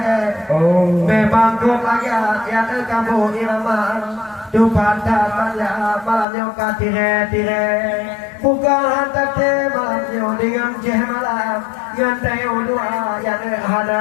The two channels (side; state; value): right; drops out; at 6.2 s